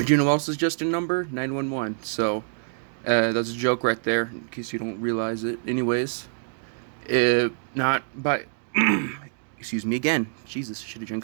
you know what else is just a number? 911. So, that's a joke right there, in case you don't realize it. Anyways, not by. Excuse me again. Jesus, I should have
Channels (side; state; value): left; silent; 60 dB below the other